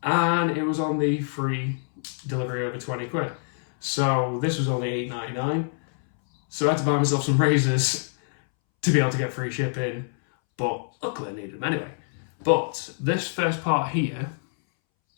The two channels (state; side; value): silent; right; 61 dB below the other